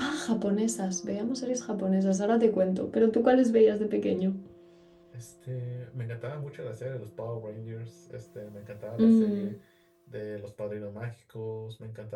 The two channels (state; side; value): identical; both; correlation 1.00